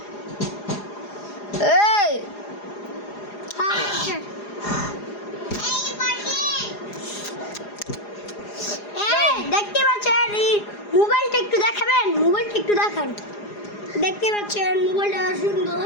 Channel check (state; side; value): late; right; 4.9 ms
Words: এই দেখতে পাচ্ছেন মোবাইলটা একটু দেখাবেন, মোবাইলটা একটু দেখান। দেখতে পাচ্ছেন মোবাইলটা সুন্দর,